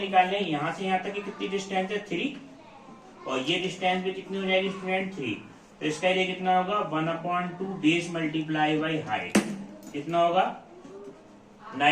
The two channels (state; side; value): identical; both; correlation 1.00